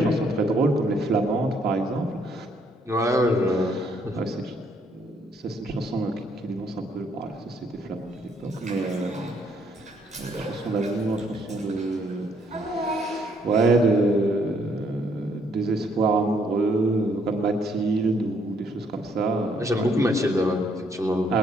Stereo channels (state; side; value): normal; both; correlation 0.68